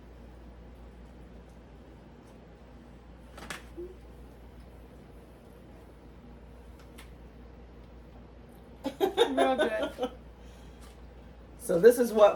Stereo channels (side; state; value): both; identical; correlation 1.00